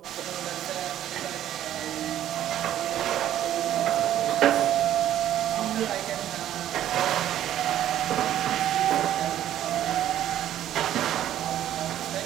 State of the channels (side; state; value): left; quieter; 11.8 dB